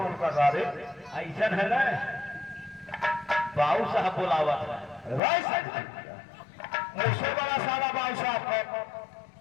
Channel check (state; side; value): drops out; right; at 5.2 s